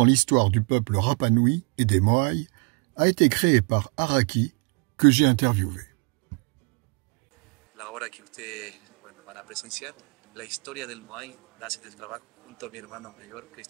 l'histoire du peuple Rapa Nui et des Moai, a été créé par Araki, que j'ai interviewé. La obra que ustedes van a presenciar, la historia del Moai, nace del trabajo junto a mi hermano mayor,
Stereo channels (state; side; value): quieter; left; 32.8 dB